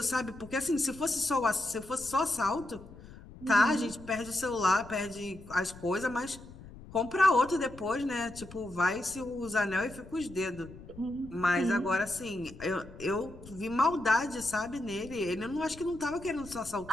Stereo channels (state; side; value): noise; left; rumble, 17 dB below the sound